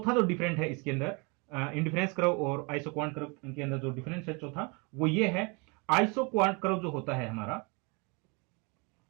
जो डिफरेंट है इसके अंदर इंडिफरेंस कर्व और आइसो क्वांट कर्व के अंदर जो डिफरेंस है चौथा, वो ये है, आइसो क्वांट कर्व जो होता है हमारा,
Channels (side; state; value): left; quieter; 30.8 dB